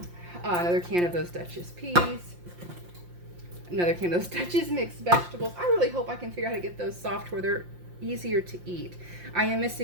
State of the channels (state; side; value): late; left; 5.7 ms